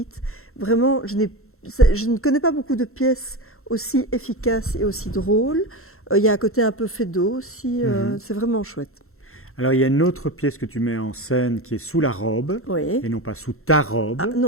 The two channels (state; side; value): late; right; 0.62 ms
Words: Vraiment, je ne connais pas beaucoup de pièces aussi efficaces et aussi drôles. Il y a un côté un peu fédo aussi. Mhm. C'est vraiment chouette. Alors, il y a une autre pièce que tu mets en scène qui est sous la robe, Oui. et non pas sous ta Ah robe.